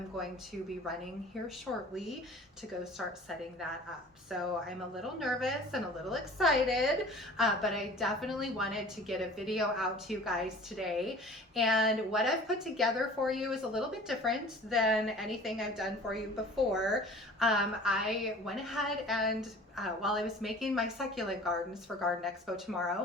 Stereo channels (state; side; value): normal; both; correlation 0.45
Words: going to be running here shortly to go start setting that up. So I'm a little nervous and a little excited, but I definitely wanted to get a video out to you guys today. And what I've put together for you is a little bit different than anything I've done for you before. I went ahead and while I was making my succulent gardens for Garden Expo